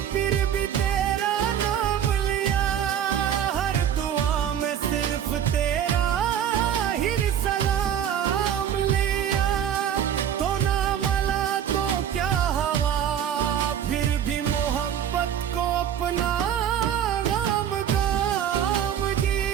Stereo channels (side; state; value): left; quieter; 9.4 dB